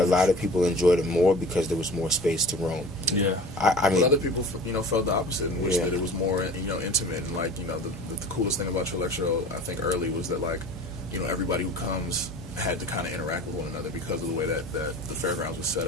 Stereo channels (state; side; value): normal; both; correlation 0.40